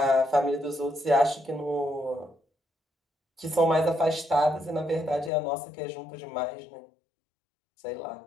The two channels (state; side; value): drops out; right; at 5.3 s